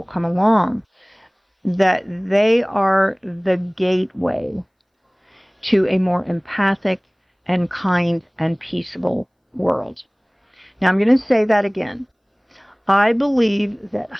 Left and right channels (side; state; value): both; identical; correlation 1.00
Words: come along, that they are the gateway to a more empathic and kind and peaceable world. Now I'm going to say that again. I believe that